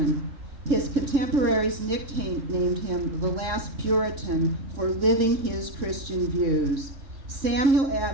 His contemporaries nicknamed him the last Puritan for living his Christian views. Samuel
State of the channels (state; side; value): late; left; 3.6 ms